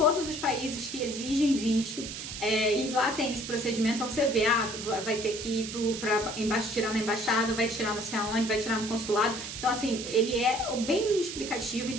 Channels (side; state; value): right; noise; hiss, 8 dB below the sound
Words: os países que exigem visto, e lá tem os procedimentos. Então você vê, vai ter que ir para tirar na embaixada, vai tirar não sei aonde, vai tirar no consulado. Então assim, ele é bem explicativo,